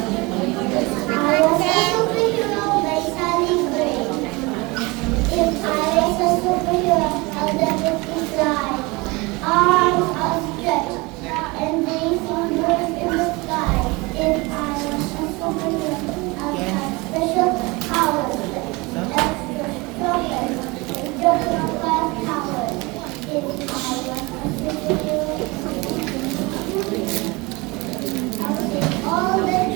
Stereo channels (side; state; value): left; quieter; 24.8 dB